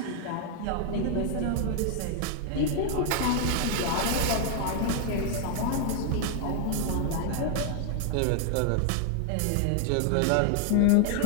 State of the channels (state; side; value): different; both; correlation 0.00